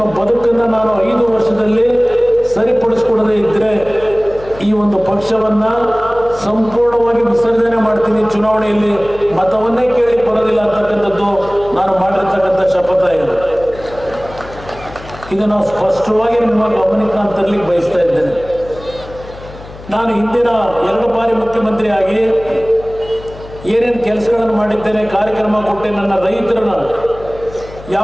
ಬದುಕನ್ನು ನಾನು 5 ವರ್ಷದಲ್ಲಿ ಸರಿಪಡಿಸ್ಕೊಡದೇ ಇದ್ದರೆ ಈ ಒಂದು ಪಕ್ಷವನ್ನು ಸಂಪೂರ್ಣವಾಗಿ ವಿಸರ್ಜನೆ ಮಾಡ್ತೀನಿ, ಚುನಾವಣೆಯಲ್ಲಿ ಮತವನ್ನೇ ಕೇಳಿ ಬರೋದಿಲ್ಲ ಅಂತಕ್ಕಂಥದ್ದು ನಾನು ಮಾಡಿರ್ತಕ್ಕಂಥ ಶಪಥ ಇದೆ. ಇದು ನಾವು ಸ್ಪಷ್ಟವಾಗಿ ನಿಮ್ಮ ಗಮನಕ್ಕೆ ನಾನು ತರಲಿಕ್ಕೆ ಬಯಸ್ತಾ ಇದ್ದೇನೆ. ನಾನು ಹಿಂದಿನ 2 ಬಾರಿ ಮುಖ್ಯಮಂತ್ರಿ ಆಗಿ ಏನೇನು ಕೆಲಸಗಳನ್ನು ಮಾಡಿದ್ದೇನೆ, ಕಾರ್ಯಕ್ರಮ ಕೊಟ್ಟೆ, ನನ್ನ ರೈತರನ್ನ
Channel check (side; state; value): left; noise; hum, 17 dB below the sound